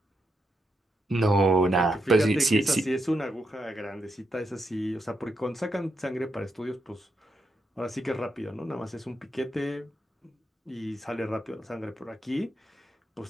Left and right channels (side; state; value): both; normal; correlation 0.82